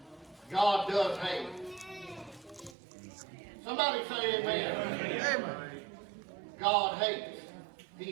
God does hate. Somebody say amen. Amen. God hates.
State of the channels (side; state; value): left; drops out; at 2.8 s